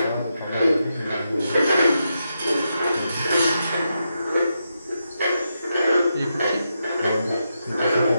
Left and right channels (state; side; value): inverted; both; correlation -0.85